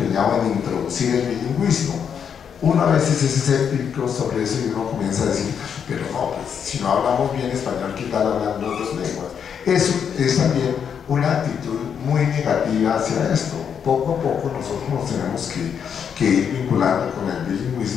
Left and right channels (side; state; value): right; quieter; 7.5 dB